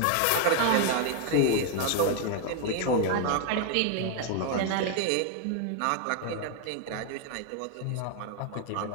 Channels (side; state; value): both; different; correlation 0.00